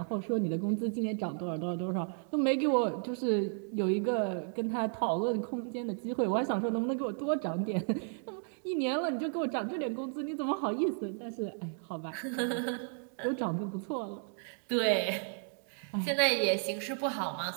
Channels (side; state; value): left; silent; 55 dB below the other